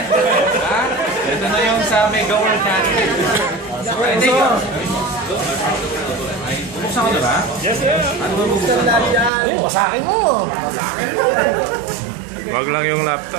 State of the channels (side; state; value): left; drops out; at 9.3 s